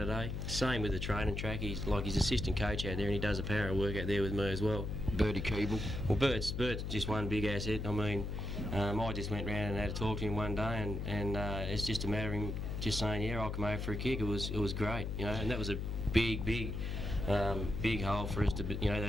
Same with the training track. He's assistant coach out there, and he does a power of work out there with me as well. Bertie Keeble. Well, Bert's just one big asset. I mean, I just went round and had a talk to him one day, and it's just a matter of him just saying, yeah, I'll come over for a kick. It was great, and that was a big hole for us to, that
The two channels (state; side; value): noise; left; hum, 3 dB below the sound